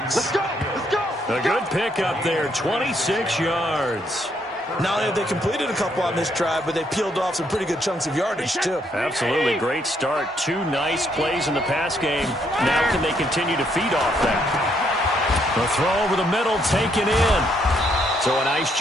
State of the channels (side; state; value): both; normal; correlation 0.72